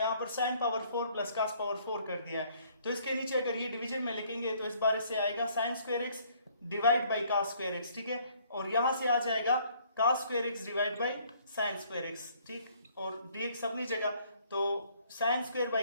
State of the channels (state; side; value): inverted; both; correlation -0.62